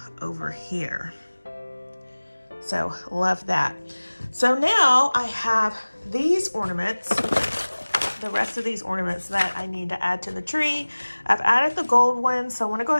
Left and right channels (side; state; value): both; inverted; correlation -1.00